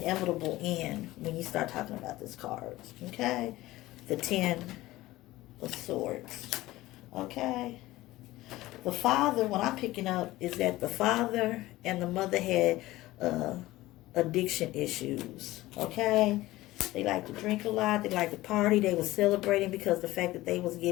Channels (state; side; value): quieter; right; 17.6 dB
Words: end when you start talking about this card. Okay? The 10 of Swords. Okay? The father, what I'm picking up is that the father and the mother had addiction issues. Okay? They like to drink a lot. They like to party. They were celebrating because of the fact that they was